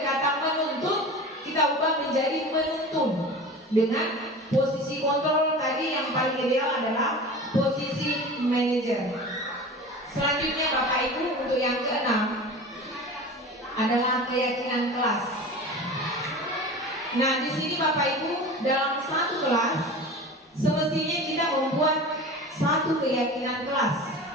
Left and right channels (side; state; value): both; normal; correlation 0.35